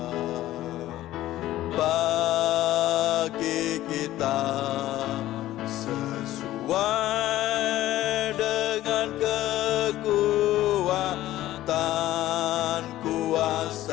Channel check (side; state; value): right; quieter; 14.7 dB